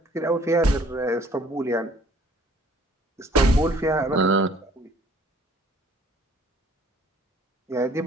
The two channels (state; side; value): normal; both; correlation 0.57